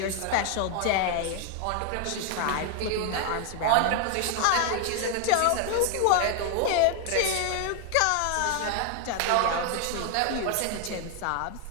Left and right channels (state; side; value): different; both; correlation 0.00